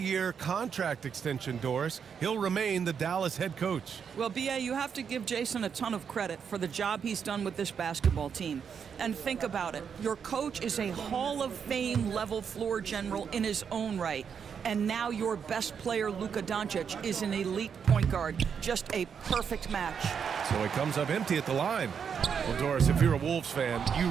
contract extension, Doris. He'll remain the Dallas head coach. Well, B.A., you have to give Jason a ton of credit for the job he's done with this basketball team. And think about it. Your coach is a Hall of Fame level floor general in his own right. And now your best player, Luka Doncic, is an elite point guard. Just a perfect match. So he comes up empty at the line. Well, Doris, if you're a Wolves fan, you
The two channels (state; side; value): quieter; left; 7.0 dB